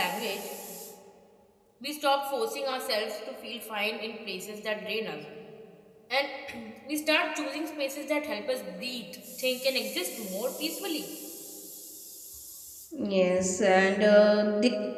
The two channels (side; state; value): both; identical; correlation 1.00